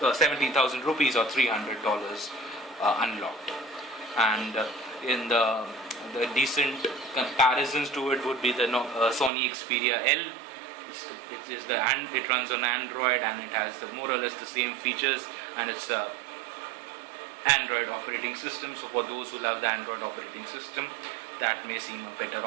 or 17,000 rupees or $300 unlocked. And in the decent comparisons to it would be the Sony Xperia L. It runs on Android, and it has more or less the same features, and it's a Android operating system. So for those who love the Android operating system, that may seem a better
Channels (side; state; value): left; drops out; at 9.3 s